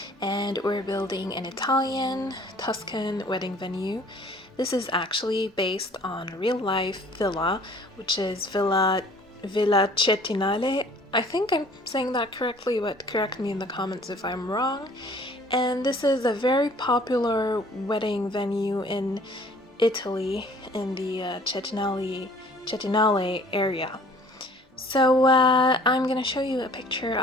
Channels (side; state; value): both; normal; correlation 0.53